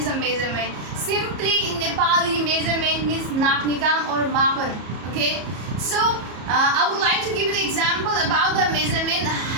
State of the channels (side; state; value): left; late; 34 ms